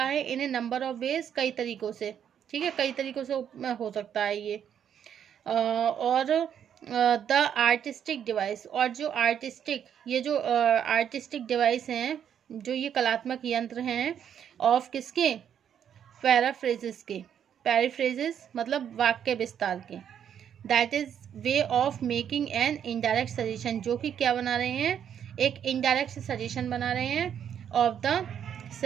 है in a number of ways, कई तरीकों से. ठीक है, कई तरीकों से हो सकता है ये. और द आर्टिस्टिक डिवाइस, और जो आर्टिस्टिक, ये जो आर्टिस्टिक डिवाइस हैं, जो ये कलात्मक यंत्र हैं, ऑफ किसके? पैराफ्रेजेस के. पैराफ्रेजेस मतलब वाक्य विस्तार के. That is way of making an indirect suggestion, जो कि क्या बना रहे हैं? एक इनडायरेक्ट सजेशन बना रहे हैं ऑफ द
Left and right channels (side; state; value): left; quieter; 8.9 dB